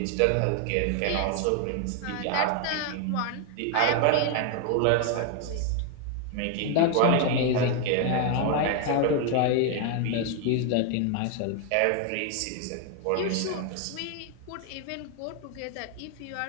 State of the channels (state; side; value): different; both; correlation 0.01